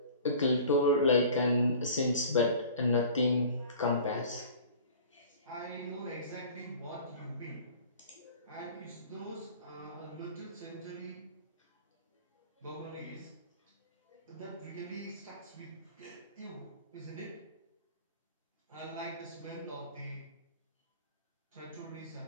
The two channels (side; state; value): both; inverted; correlation -0.43